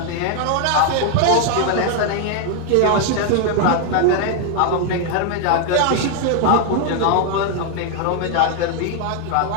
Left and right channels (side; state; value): both; different; correlation 0.00